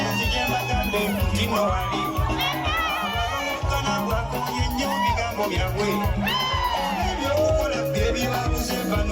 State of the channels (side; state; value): both; identical; correlation 1.00